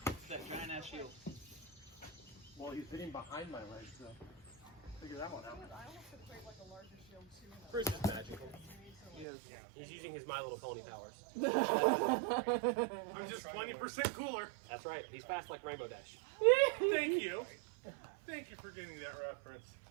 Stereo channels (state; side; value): drops out; left; at 9.2 s